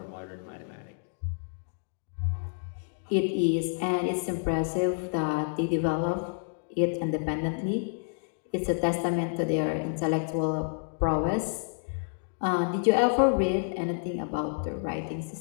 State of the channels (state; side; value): silent; right; digital silence